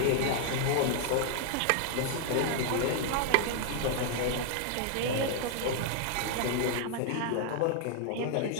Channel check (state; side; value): different; both; correlation 0.00